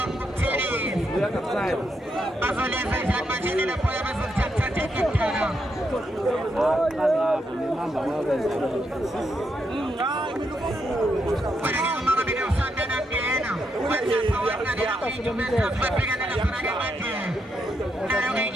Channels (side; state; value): both; normal; correlation 0.80